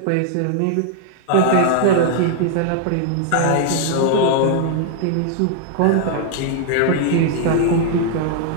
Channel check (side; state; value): both; different; correlation -0.01